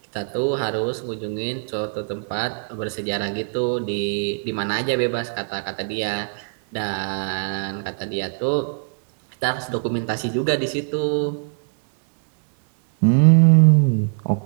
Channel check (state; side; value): silent; left; 64 dB below the other